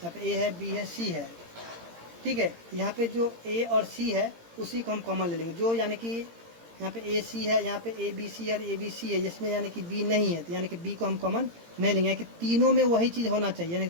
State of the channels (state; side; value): late; left; 18 ms